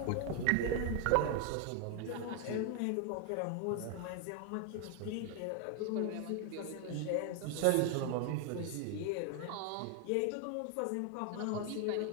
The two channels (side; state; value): both; different; correlation 0.00